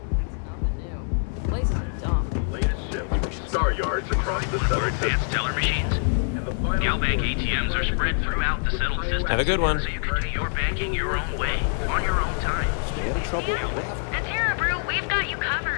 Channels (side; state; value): right; silent; 62 dB below the other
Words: Place is dumb. Latest ship. Star yards across the More southern advanced teller machines. Galbank ATMs are spread throughout the settled system. Have a good one. So you can do your banking your own way, on your own time. Stay out of trouble. At Terra Brew, we've got you